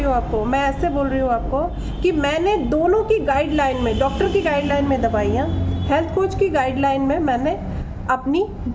हूँ आपको, मैं ऐसे बोल रही हूँ आपको कि मैंने दोनों की गाइडलाइन में, डॉक्टर की गाइडलाइन में दवाइयाँ, हेल्थ कोच की गाइडलाइन में मैंने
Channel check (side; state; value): both; identical; correlation 1.00